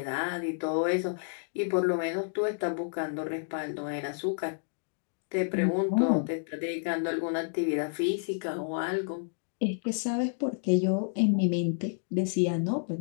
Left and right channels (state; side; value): silent; right; digital silence